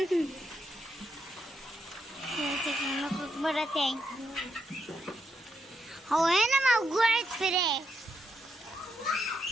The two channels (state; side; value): normal; both; correlation 0.81